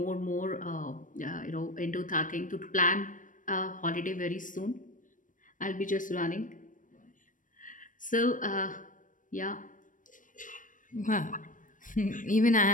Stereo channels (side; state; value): right; late; 0.38 ms